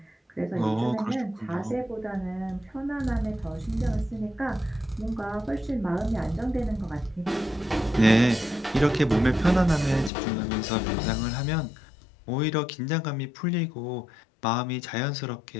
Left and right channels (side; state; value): right; drops out; at 10.1 s